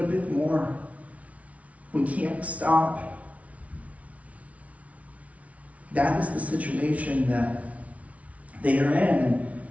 bit more. We can't stop. That is the situation that they are in.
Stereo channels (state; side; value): late; left; 0.066 ms